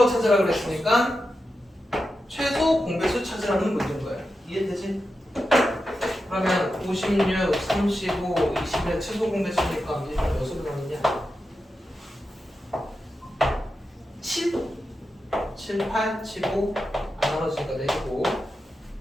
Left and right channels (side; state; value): both; normal; correlation 0.90